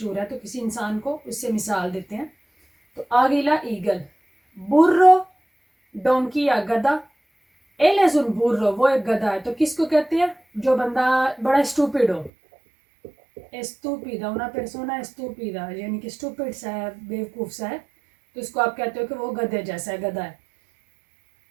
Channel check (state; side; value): drops out; left; at 12.3 s